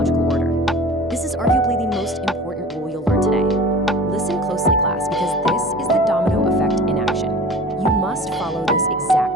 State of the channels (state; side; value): normal; both; correlation 0.40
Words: order. This is arguably the most important rule you'll learn today. Listen closely, class, because this is the domino effect in action. You must follow this